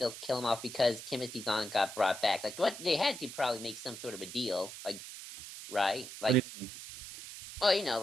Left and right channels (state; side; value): noise; right; hiss, 11 dB below the sound